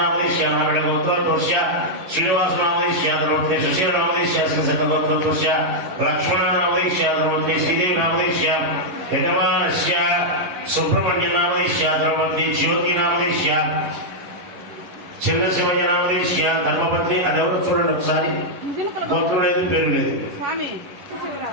నాగళ గోత్రోద్భవస్య శ్రీనివాసనామదేశ్య ధర్మపత్ని సుశీలనామదేశ్య శ్రీశంక గోత్రోద్భవస్య లక్ష్మణనామదేశ్య ధర్మపత్ని శ్రీదేవినామదేశ్య యజమానస్య సుబ్రహ్మణ్యనామదేశ్య ధర్మపత్ని జ్యోతినామదేశ్య చిన్న శివయ్యనామదేశ్య ధర్మపత్ని అది ఎవరు చూడండి ఒకసారి గోత్రం లేదు పేరు లేదు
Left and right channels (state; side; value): late; left; 11 ms